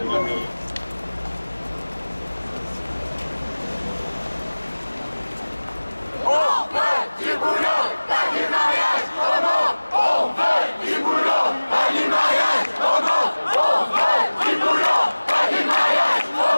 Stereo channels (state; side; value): inverted; both; correlation -1.00